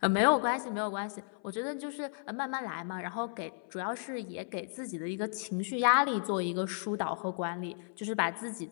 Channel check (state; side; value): silent; right; 55 dB below the other